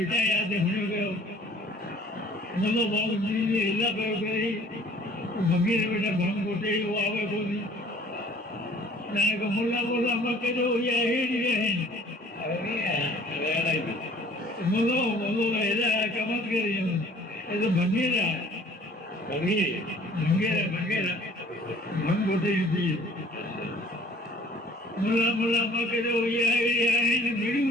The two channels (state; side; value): normal; both; correlation 0.53